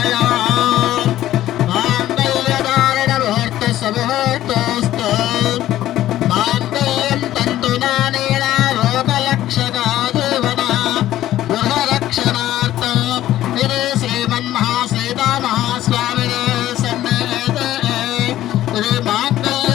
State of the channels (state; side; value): quieter; right; 13.6 dB